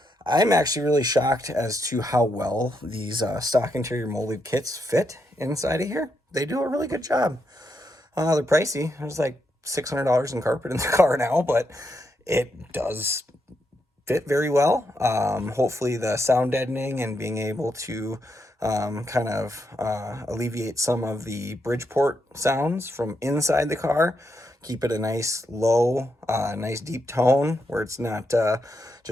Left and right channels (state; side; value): normal; both; correlation 0.81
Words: I'm actually really shocked as to how well these stock interior molded kits fit inside of here. They do a really good job. They're pricey. There's like $600 in carpet in the car now, but it does fit very well. Hopefully the sound deadening and being able to kind of alleviate some of the Bridgeport sounds from inside the car, keep it a nice low, nice deep tone where it's not